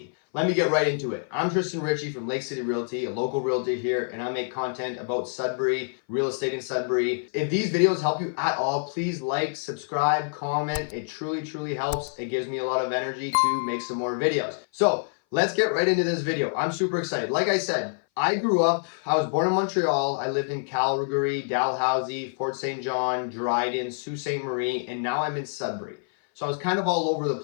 Let me get right into it. I'm Tristan Ritchie from Lake City Realty, a local realtor here, and I make content about Sudbury, real estate in Sudbury. If these videos help you at all, please like, subscribe, comment. It truly helps. It gives me a lot of energy to make some more videos. So let's get right into this video. I'm super excited. Like I said, I was born in Montreal. I lived in Calgary, Dalhousie, Fort St. John, Dryden, Sault Ste. Marie, and now I'm in Sudbury. So I was kind of all over the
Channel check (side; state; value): right; silent; 58 dB below the other